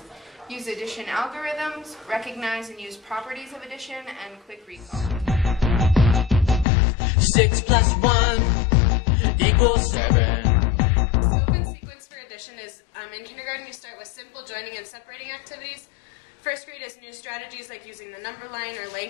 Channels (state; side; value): drops out; right; at 6.7 s